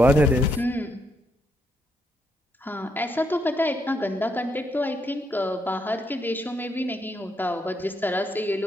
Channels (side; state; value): both; normal; correlation 0.77